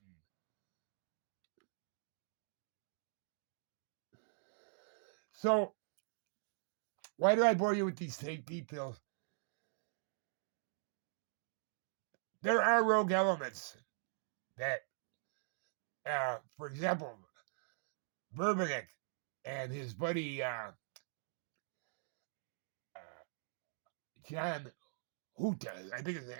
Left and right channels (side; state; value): left; silent; digital silence